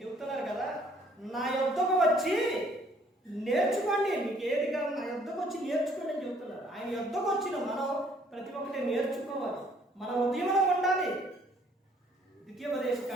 చెబుతున్నారు కదా, నా యొద్దకు వచ్చి నేర్చుకోండి, మీకు ఏది కాదు నా యొద్దకు వచ్చి నేర్చుకోండి అని చెబుతున్నారు. ఆయన యొద్దకు వచ్చిన మనం ప్రతి ఒక్కటి నేర్చుకోవాలి. మన ఉదయంలో ఉండాలి.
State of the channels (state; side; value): normal; both; correlation 0.62